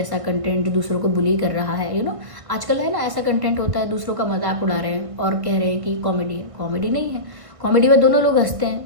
कंटेंट जो दूसरों को बुली कर रहा है, आजकल है ना ऐसा कंटेंट होता है, दूसरों का मजाक उड़ा रहे हैं और कह रहे हैं कि कॉमेडी है। कॉमेडी नहीं है, कॉमेडी में दोनों लोग हंसते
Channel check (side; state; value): left; late; 1.6 ms